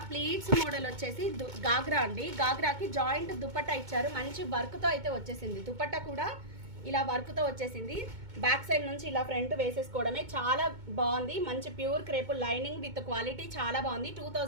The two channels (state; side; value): late; left; 2.2 ms